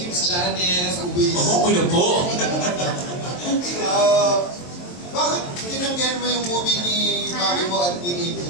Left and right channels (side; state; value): right; late; 23 ms